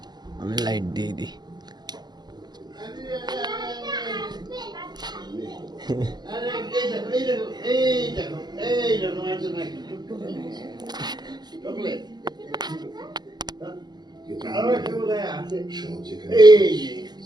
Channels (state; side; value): late; left; 0.20 ms